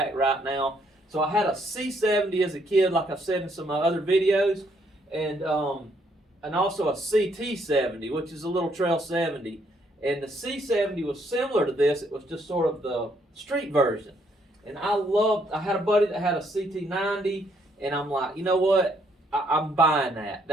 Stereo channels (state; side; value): normal; both; correlation 0.70